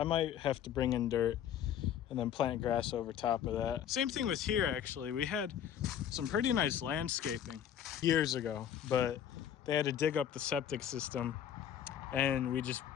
might have to bring in dirt and then plant grass over top of that. Same thing with here, actually. We had some pretty nice landscaping years ago, but they had to dig up the septic system and we just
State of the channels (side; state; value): right; quieter; 9.6 dB